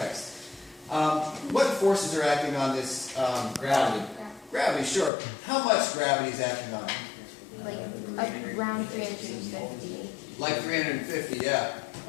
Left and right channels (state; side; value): drops out; right; at 5.1 s